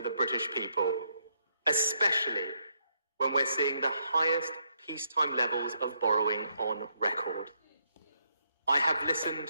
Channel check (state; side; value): inverted; both; correlation -0.76